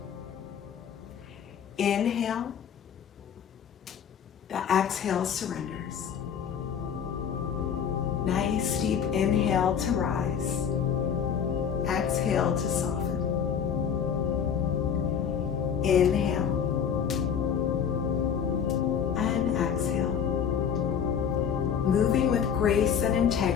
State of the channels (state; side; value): quieter; right; 7.7 dB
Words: Inhale. The exhale surrenders. Nice deep inhale to rise. Exhale to soften. Inhale. And exhale. Moving with grace and